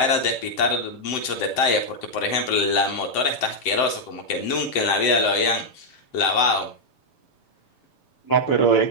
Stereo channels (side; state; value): right; late; 7.8 ms